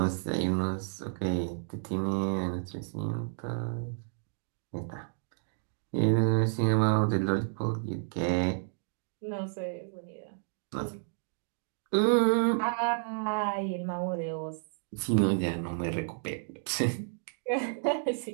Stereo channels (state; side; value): silent; left; digital silence